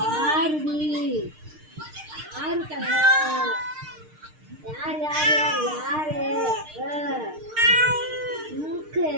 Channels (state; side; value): late; left; 6.6 ms